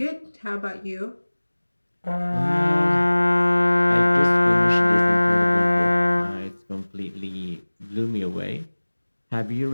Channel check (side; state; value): both; inverted; correlation -1.00